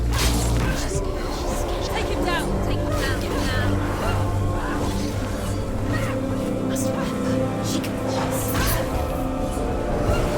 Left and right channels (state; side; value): identical; both; correlation 1.00